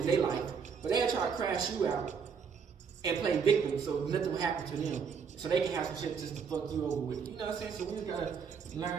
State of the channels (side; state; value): left; quieter; 6.3 dB